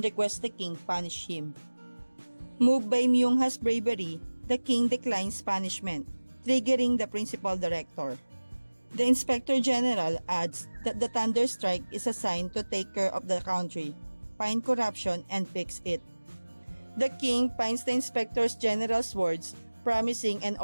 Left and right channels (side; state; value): both; inverted; correlation -1.00